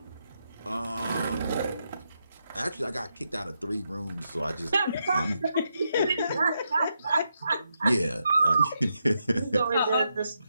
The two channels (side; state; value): both; inverted; correlation -0.83